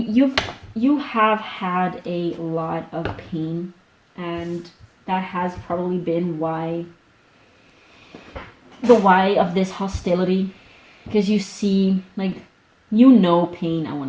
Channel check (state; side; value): identical; both; correlation 1.00